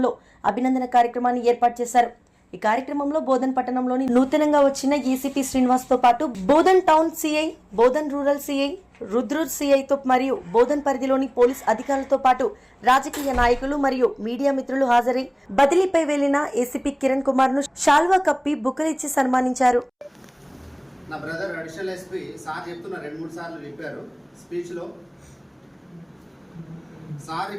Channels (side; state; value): both; identical; correlation 1.00